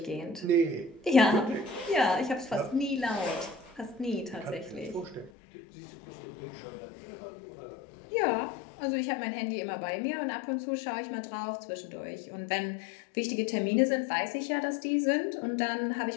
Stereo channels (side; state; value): right; drops out; at 5.3 s